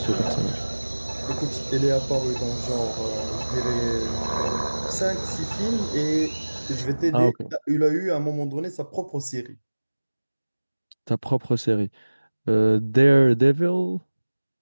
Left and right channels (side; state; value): both; inverted; correlation -1.00